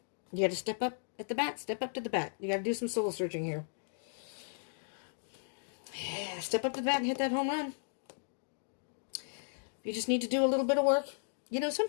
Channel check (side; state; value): right; silent; digital silence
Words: You got to step up at the bat. Step up to the bat. You got to do some soul searching here. Yeah, step up to the bat and hit that home run. You just need to do a little bit of work. You know,